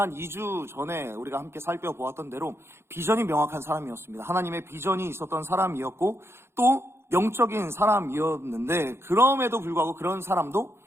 2주 전에 우리가 함께 살펴보았던 대로 비전이 명확한 사람이었습니다. 하나님의 비전이 있었던 사람이었고, 또 영적인 사람이었는데, 그럼에도 불구하고 그런 사람도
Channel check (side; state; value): left; late; 0.12 ms